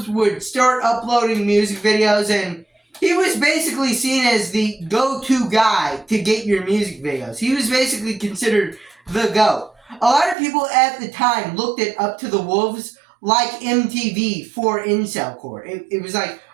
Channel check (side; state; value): left; drops out; at 10.4 s